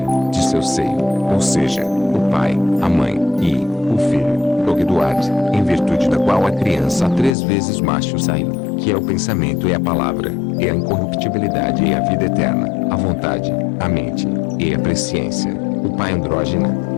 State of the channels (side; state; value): right; drops out; at 7.4 s